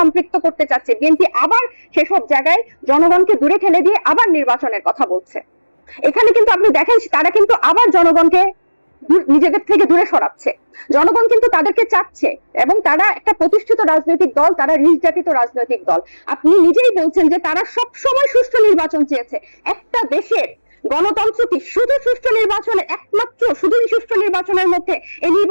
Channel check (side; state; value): both; inverted; correlation -1.00